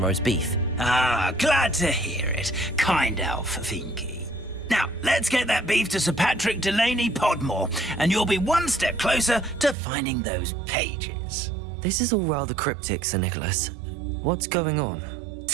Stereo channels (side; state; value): left; drops out; at 9.8 s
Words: roast beef. Ah, glad to hear it. Kind elf, Finky. Now, let's get that beef to Sir Patrick Delaney Podmore, and you'll be one step closer to finding those pages. This is all rather cryptic, Sir Nicholas. What's going on?